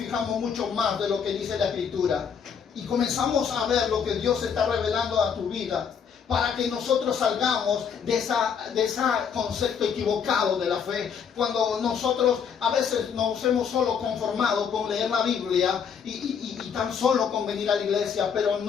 mucho más de lo que dice la Escritura y comenzamos a ver lo que Dios está revelando a tu vida, para que nosotros salgamos de ese concepto equivocado de la fe. Cuando nosotros a veces nos hemos solo conformado con leer la Biblia y tan solo con venir a la iglesia, pero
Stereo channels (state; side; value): quieter; right; 7.0 dB